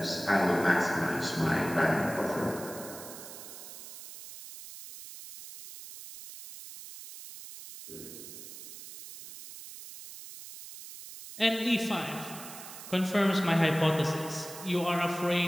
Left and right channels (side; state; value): right; noise; hiss, 13 dB below the sound